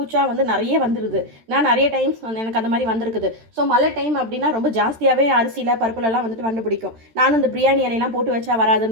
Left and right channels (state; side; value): late; left; 13 ms